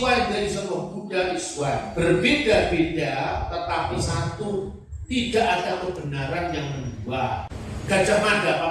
and the essence of Buddha is one. Berbeda-beda tetapi satu. Tidak ada kebenaran yang kedua. Gajah Mada,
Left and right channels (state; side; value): identical; both; correlation 1.00